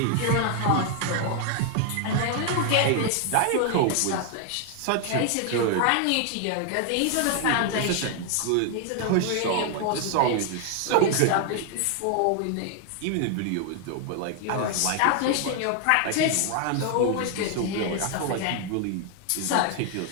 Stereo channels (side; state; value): both; different; correlation 0.00